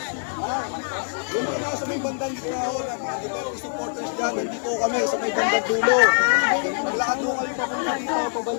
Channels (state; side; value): silent; right; 61 dB below the other